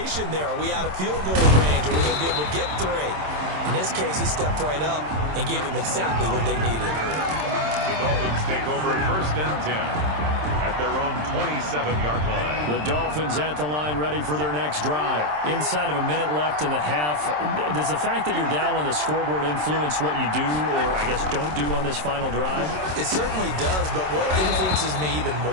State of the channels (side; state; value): left; late; 27 ms